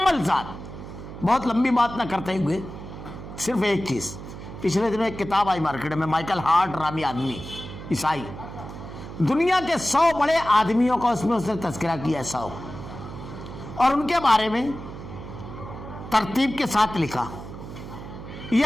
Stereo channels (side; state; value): right; noise; hum, 12 dB below the sound